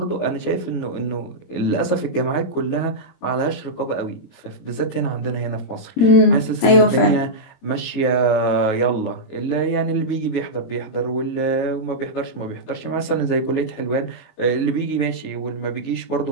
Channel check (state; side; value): late; right; 22 ms